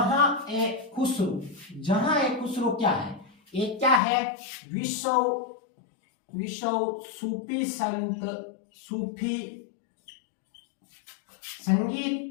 ए खुसरो क्या है? एक क्या है? विश्व विश्व सूफी सूफी संगीत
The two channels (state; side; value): drops out; right; at 4.0 s